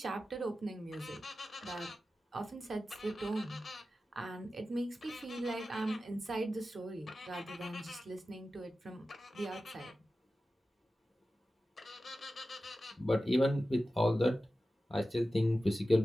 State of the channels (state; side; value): normal; both; correlation 0.94